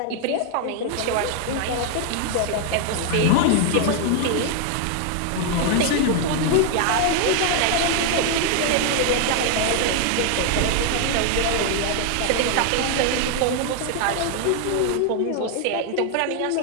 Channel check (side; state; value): both; different; correlation 0.00